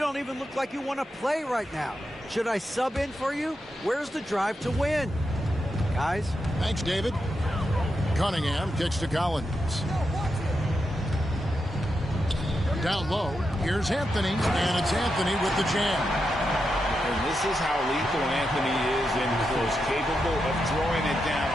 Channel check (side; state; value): both; normal; correlation 0.86